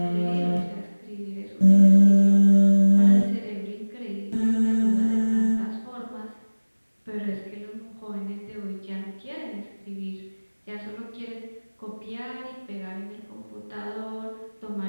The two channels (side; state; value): both; inverted; correlation -1.00